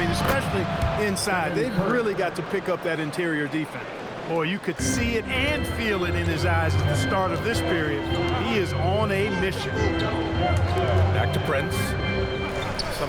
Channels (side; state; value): both; identical; correlation 1.00